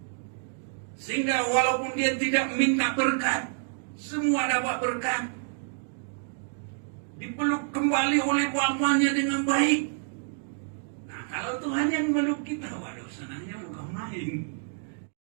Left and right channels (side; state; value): left; silent; digital silence